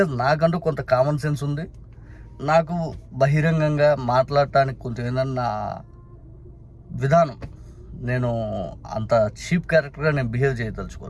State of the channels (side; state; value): both; identical; correlation 1.00